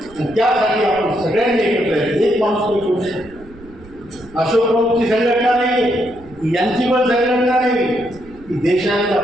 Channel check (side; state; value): right; noise; rumble, 23 dB below the sound